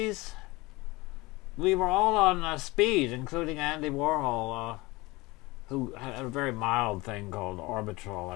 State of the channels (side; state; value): right; quieter; 22.3 dB